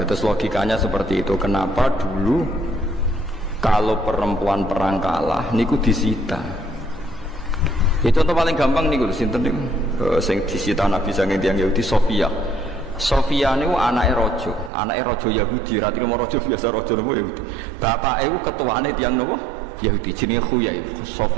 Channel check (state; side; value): drops out; left; at 14.7 s